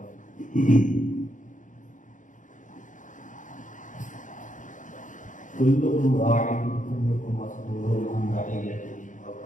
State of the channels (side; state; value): right; late; 0.37 ms